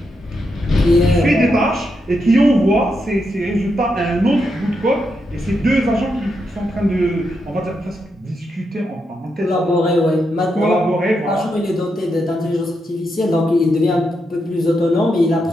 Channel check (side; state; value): both; normal; correlation 0.83